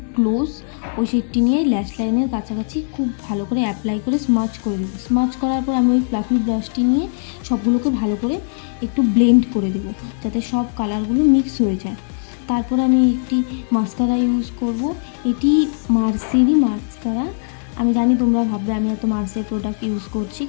ক্লোজ, ওই শেডটি নিয়ে ল্যাশ লাইনের কাছাকাছি খুব ভালো করে অ্যাপ্লাই করে স্মাচ করে দেবো। স্মাচ করার পর আমি ওই ফ্লাফি ব্রাশটি নিয়ে সবগুলোকে ভালো করে একটু ব্লেন্ড করে দেবো, যাতে সব কালারগুলো মিক্স হয়ে যায়। তারপর আমি একটি মাস্কারা ইউজ করব। এটি মার্সেরই মাস্কারা। আমি জানি তোমরা ভাববে আমি এত মার্সের প্রোডাক্ট ইউজ করছি,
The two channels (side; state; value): right; silent; digital silence